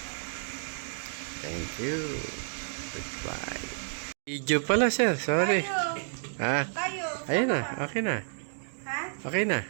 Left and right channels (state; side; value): silent; left; digital silence